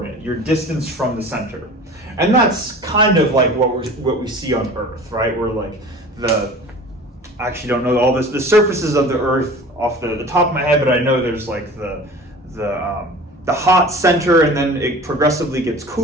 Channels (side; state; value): both; normal; correlation 0.41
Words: your distance from the center, and that's kind of like what we see on Earth, right? We're like I actually don't know all the surfaces of the Earth off the top of my head, but I know there's like the hot center, and then it progressively gets